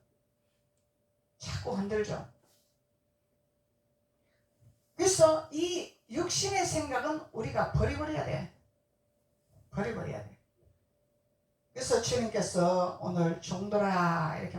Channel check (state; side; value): identical; both; correlation 1.00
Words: 자꾸 흔들죠. 그래서 이 육신의 생각은 우리가 버려버려야 돼. 버려버려야 돼. 그래서 주님께서 오늘 종들아 이렇게